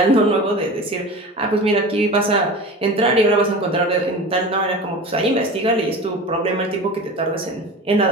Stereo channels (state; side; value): normal; both; correlation 0.33